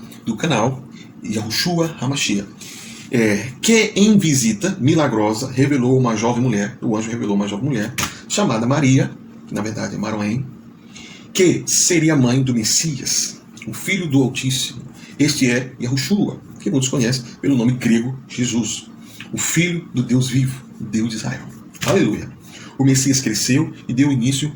do canal, Yahushua HaMashiach. Que em visita milagrosa revelou uma jovem mulher, o anjo revelou uma jovem mulher, chamada Maria, que na verdade é Maroém, que seria mãe do Messias, o Filho do Altíssimo. Este é Yahushua, que muitos conhecem pelo nome grego Jesus, o Filho do Deus vivo, Deus de Israel. Aleluia! O Messias cresceu e deu início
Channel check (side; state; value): both; identical; correlation 1.00